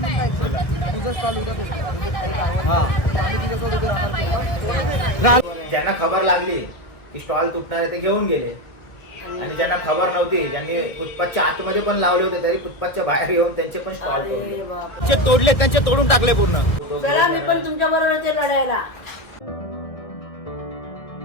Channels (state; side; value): late; right; 1.6 ms